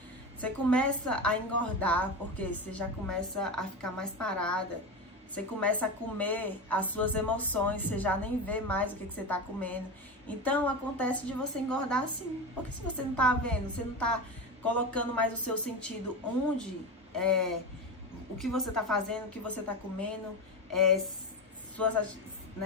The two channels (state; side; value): normal; both; correlation 0.21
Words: Você começa a engordar, porque você já começa a ficar mais parada. Você começa a comer as suas emoções, você já nem vê mais o que você está comendo. Então, acontece de você engordar assim. Porque se você não está vendo, você não está colocando mais o seu sentido onde, o que você está fazendo, o que você está comendo,